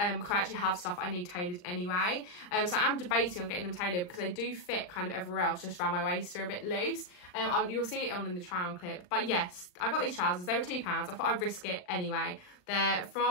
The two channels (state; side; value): late; right; 39 ms